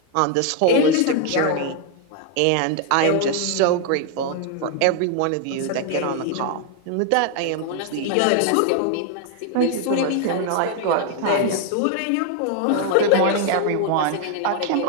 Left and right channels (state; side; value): different; both; correlation 0.01